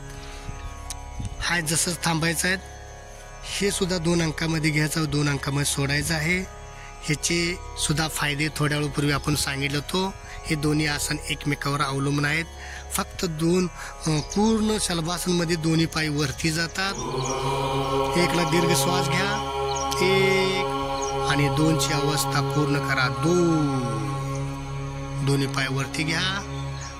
हा जसंच थांबायचं आहे. हे सुद्धा 2 अंकामध्ये घ्यायचं, 2 अंकामध्ये सोडायचं आहे. ह्याचे सुद्धा फायदे थोड्या वेळपूर्वी आपण सांगितलं होतो. हे दोन्ही आसन एकमेकावर अवलंबून आहेत. फक्त पूर्ण शलभासन मध्ये दोन्ही पाय वरती जातात. 1 ला दीर्घ श्वास घ्या, 1 आणि 2 ची अवस्था पूर्ण करा. 2 दोन्ही पाय वरती घ्या,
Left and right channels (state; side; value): identical; both; correlation 1.00